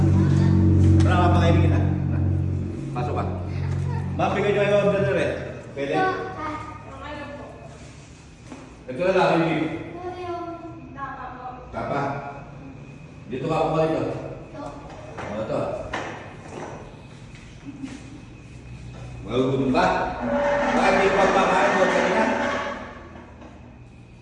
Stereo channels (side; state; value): both; identical; correlation 1.00